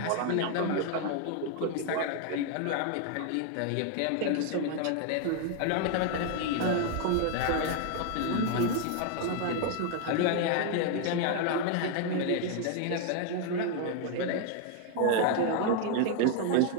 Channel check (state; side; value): different; both; correlation 0.00